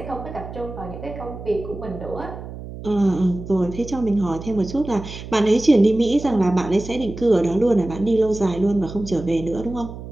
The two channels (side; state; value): right; noise; hum, 12 dB below the sound